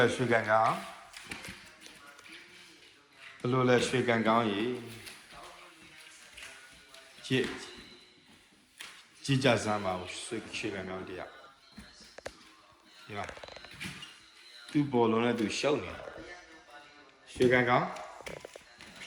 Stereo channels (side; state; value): both; identical; correlation 1.00